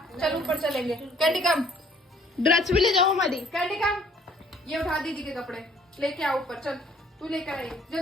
चल ऊपर चलेंगे। कैंडी कम, ड्रेस भी ले जाओ हमारी। कैंडी कम, ये उठा दीदी के कपड़े लेके आ ऊपर। चल तू लेकर आई,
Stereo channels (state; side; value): normal; both; correlation 0.59